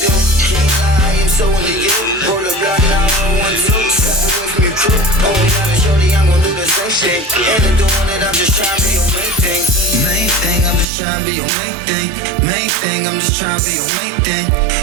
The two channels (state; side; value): drops out; left; at 10.9 s